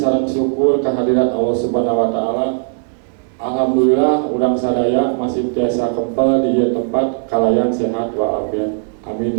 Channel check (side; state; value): left; silent; digital silence